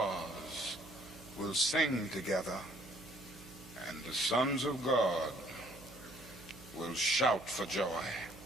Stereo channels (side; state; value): right; noise; hum, 19 dB below the sound